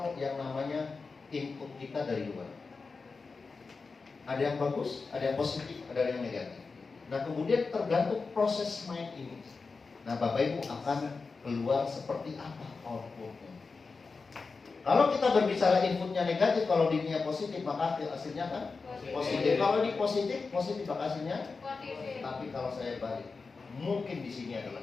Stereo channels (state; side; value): quieter; right; 4.4 dB